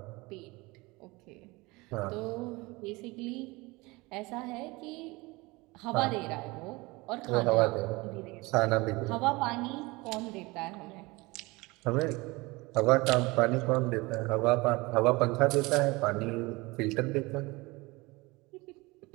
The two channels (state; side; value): quieter; left; 23.4 dB